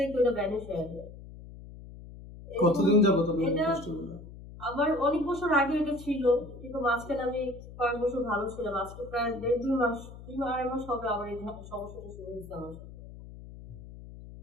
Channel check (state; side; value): noise; left; hum, 15 dB below the sound